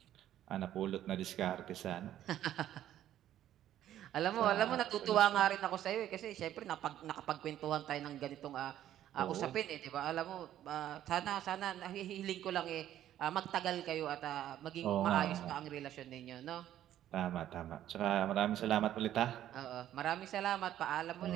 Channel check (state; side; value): quieter; left; 11.9 dB